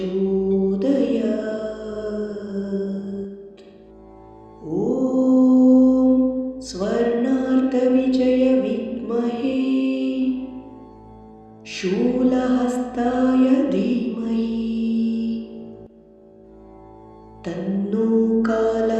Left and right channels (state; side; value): identical; both; correlation 1.00